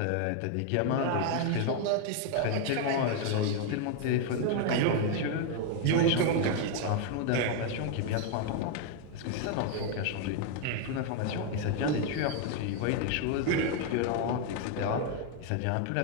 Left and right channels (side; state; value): both; different; correlation 0.01